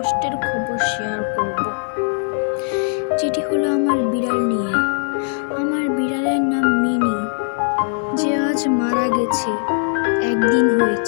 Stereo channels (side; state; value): right; silent; 66 dB below the other